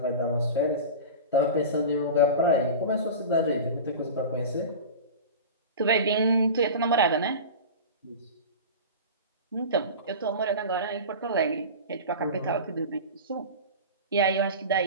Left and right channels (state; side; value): inverted; both; correlation -0.30